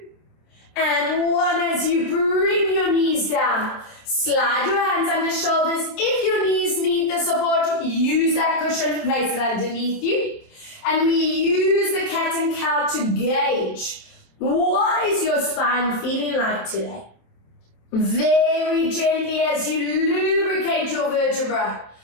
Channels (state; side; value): late; right; 27 ms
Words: and 1. As you bring your knees down, slide your hands under shoulders. If your knees need the support, use that cushion, place it underneath you. And we use the cat and cow to gauge, what is your spine feeling like today? Very gently as you lubricate your vertebra.